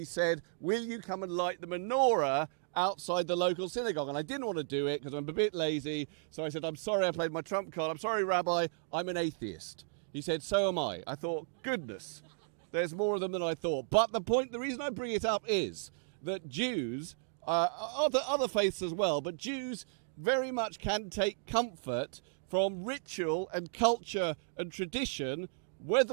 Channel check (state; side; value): silent; left; digital silence